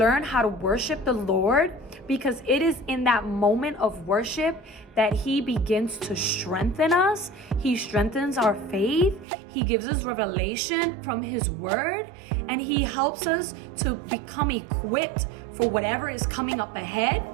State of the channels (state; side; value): drops out; left; at 9.2 s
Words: how to worship the Lord? Because it is in that moment of worship that He begins to strengthen us. He strengthens our faith. He gives us revelation from His word, and He helps us to become equipped for whatever is coming up ahead.